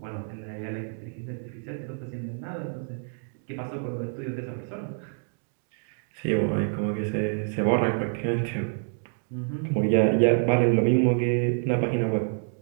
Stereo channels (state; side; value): silent; left; 55 dB below the other